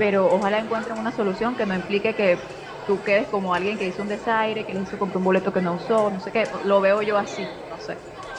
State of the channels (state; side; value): identical; both; correlation 1.00